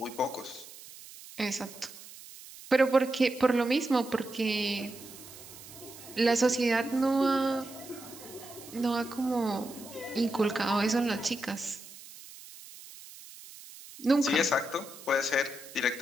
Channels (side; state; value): right; noise; hiss, 17 dB below the sound